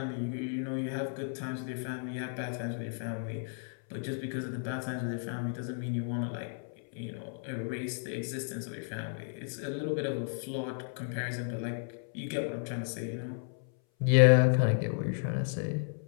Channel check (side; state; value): right; silent; 56 dB below the other